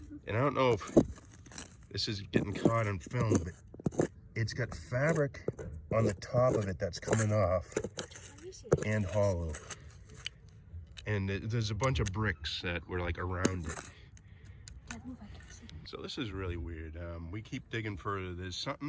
And I don't know if this is getting caught on film, but it's got fabric on the top of it that's coming off and hollow. And there's a bunch of bricks that were like around it. So this is really weird. We keep digging further. There's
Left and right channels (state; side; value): identical; both; correlation 1.00